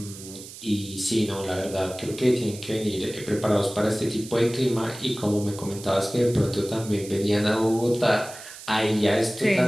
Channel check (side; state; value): right; noise; hiss, 15 dB below the sound